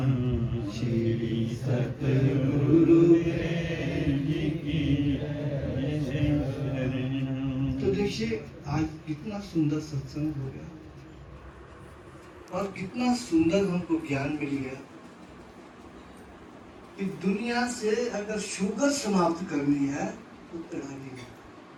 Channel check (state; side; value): identical; both; correlation 1.00